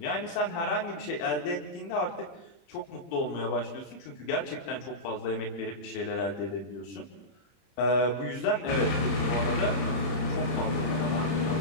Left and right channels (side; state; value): right; late; 30 ms